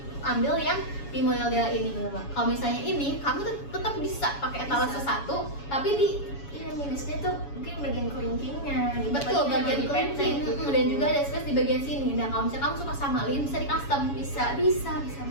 ambil yang di model Della ini. Kalau misalnya ini, kamu tetap bisa pakai etalase Bisa. 1, tapi di Iya minusnya tuh mungkin bagian kelingkingnya. Gitu. betul bagian lebih kelingking, pendek. dan juga ada space di bagian sini. Dan kalau misalnya kamu suka sama Lin, bisa di custom. Bisa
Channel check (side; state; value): right; late; 7.1 ms